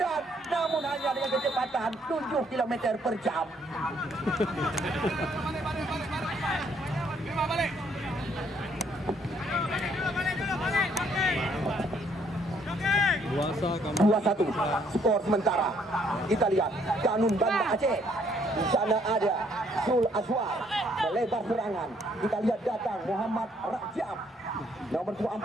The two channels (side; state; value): both; normal; correlation 0.67